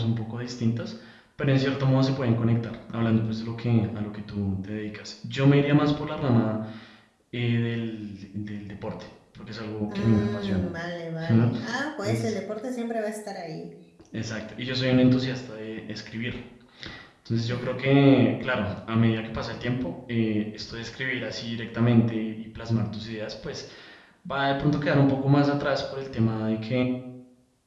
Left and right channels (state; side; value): identical; both; correlation 1.00